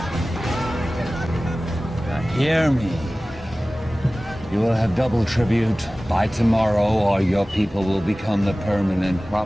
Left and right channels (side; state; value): both; normal; correlation 0.97